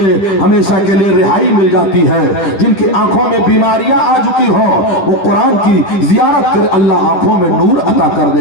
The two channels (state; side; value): late; right; 10 ms